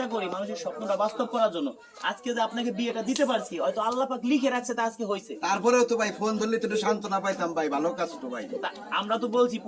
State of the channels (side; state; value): both; identical; correlation 1.00